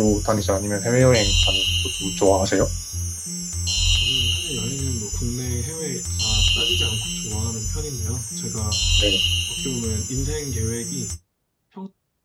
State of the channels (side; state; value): both; identical; correlation 1.00